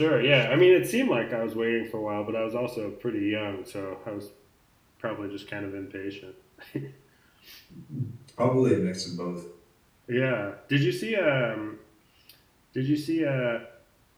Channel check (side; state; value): both; identical; correlation 1.00